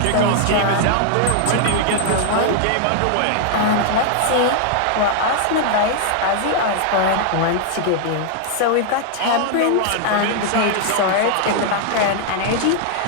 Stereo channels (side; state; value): both; different; correlation 0.00